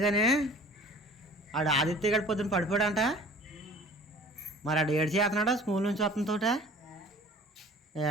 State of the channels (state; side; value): normal; both; correlation 0.47